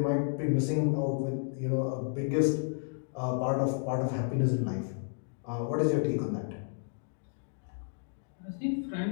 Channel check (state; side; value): silent; right; digital silence